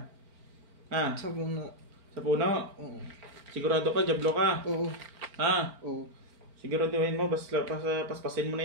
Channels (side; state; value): left; late; 4.4 ms